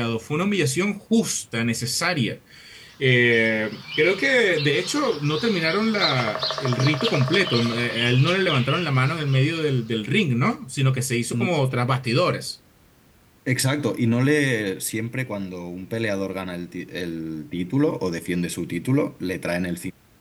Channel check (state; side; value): identical; both; correlation 1.00